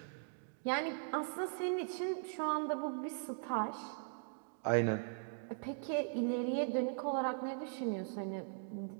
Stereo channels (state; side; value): silent; left; digital silence